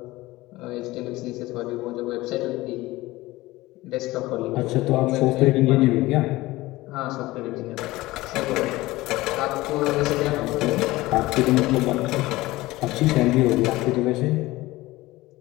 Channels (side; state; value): right; quieter; 18.9 dB